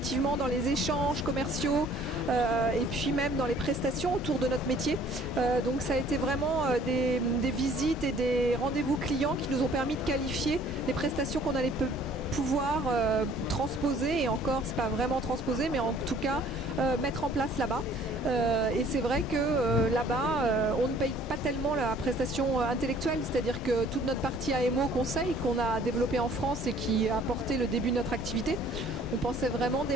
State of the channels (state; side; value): normal; both; correlation 0.56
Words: dans les échanges commerciaux et puis même dans les prestations autour de notre métier. Donc ça a été vraiment des visites et des rendez-vous clients qui nous ont permis de qualifier les prestations qu'on allait pouvoir transposer, et encore c'est pas vraiment transposer, mais en tout cas mettre en place là-bas. Et c'est vrai que là-bas on ne paye pas tellement la prestation intellectuelle, c'est-à-dire que toute notre partie AMO conseil qu'on a développée en France et qui a porté le début de notre activité, on pensait vraiment